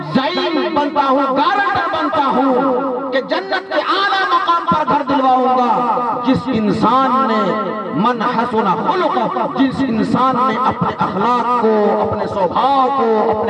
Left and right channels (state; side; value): identical; both; correlation 1.00